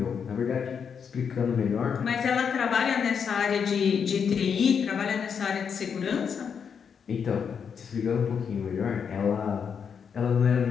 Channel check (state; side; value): quieter; right; 6.8 dB